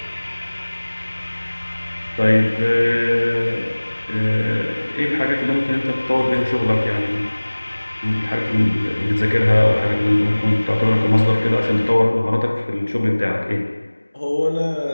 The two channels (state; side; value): inverted; both; correlation -1.00